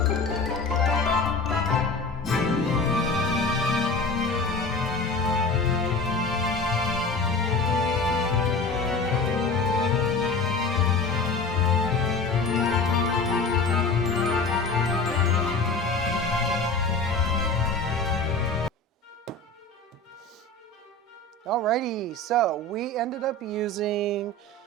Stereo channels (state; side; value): quieter; right; 3.1 dB